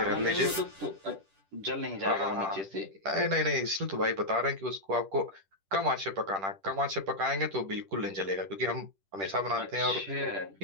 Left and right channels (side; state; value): left; late; 10 ms